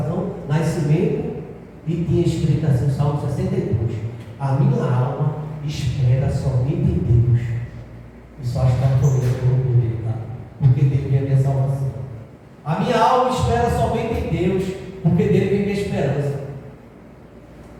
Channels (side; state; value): both; identical; correlation 1.00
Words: nascimento, e tinha escrito assim, Salmo 62. A minha alma espera somente em Deus. E só está correndo dele, tá? Porque dele vem a minha salvação. A minha alma espera somente em Deus, porque dele vem minha esperança.